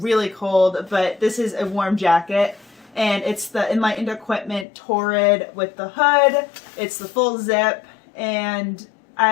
cold, but this is a warm jacket, and it's the Enlightened Equipment Torrid with the hood. It's the full zip, and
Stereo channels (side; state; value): right; drops out; at 4.7 s